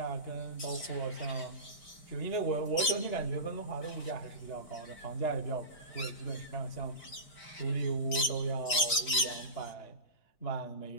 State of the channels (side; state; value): right; late; 5.1 ms